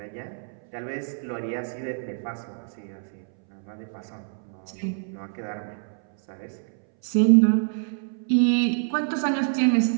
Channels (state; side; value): silent; left; 61 dB below the other